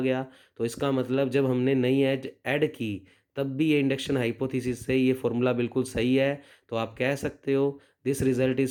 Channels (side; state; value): both; identical; correlation 1.00